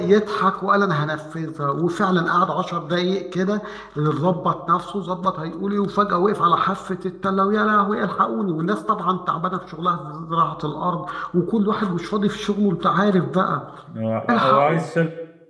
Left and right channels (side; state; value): both; identical; correlation 1.00